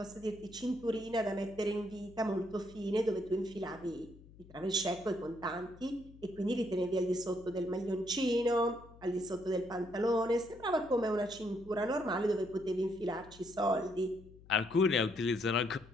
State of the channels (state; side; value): noise; left; hum, 21 dB below the sound